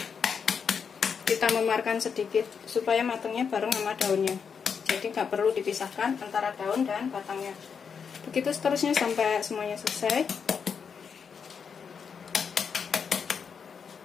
Kita memarkan sedikit supaya matangnya bareng sama daunnya, jadi nggak perlu dipisahkan antara daun dan batangnya. Begitu seterusnya sampai semuanya selesai.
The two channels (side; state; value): right; quieter; 6.4 dB